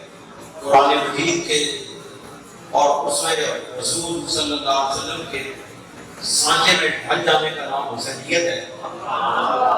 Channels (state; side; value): identical; both; correlation 1.00